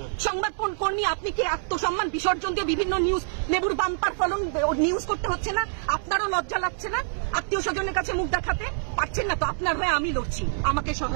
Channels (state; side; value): silent; left; 61 dB below the other